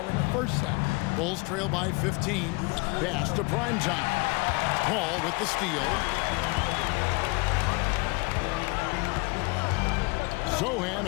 in the first half. Bulls trail by 15. Pass to Primetime. Paul with the steal. Sochan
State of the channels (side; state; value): right; quieter; 27.5 dB